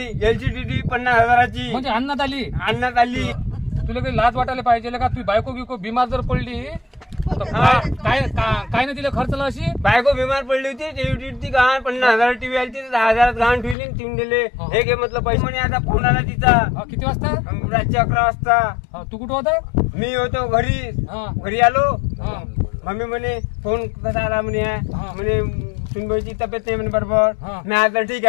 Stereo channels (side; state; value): right; drops out; at 13.8 s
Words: LCDD 50,000ची म्हणजे अन्नात आणण्यात आली. तुला काही लाज वाटायला पाहिजे का? तू बायको बिको बिमार जर पडली तर काय काय नाही तिला खर्चला अशी? बायको बिमार पडली होती ती गहाण 50,000 टीव्ही आली 10,000 गहाण ठेवली ठेवून दिले. हे घे म्हटलं पैसे. म्हणे आता फोन आला तिचा. किती वाजता? रात्री 11 वाजता. तू कुठं होता? मी होतो घरी आलो. मम्मी म्हणे फोन कसा आला म्हणे सुनबाईची तब्येत नाही म्हणे बरोबर. मी आता ठीक